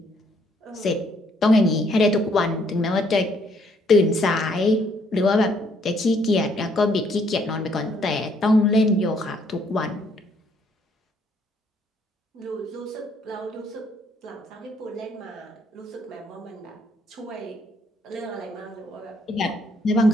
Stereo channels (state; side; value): normal; both; correlation 0.67